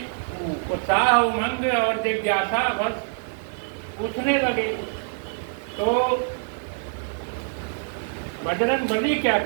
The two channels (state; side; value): silent; left; digital silence